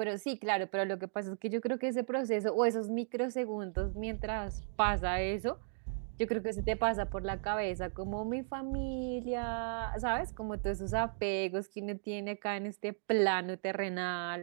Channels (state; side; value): silent; left; digital silence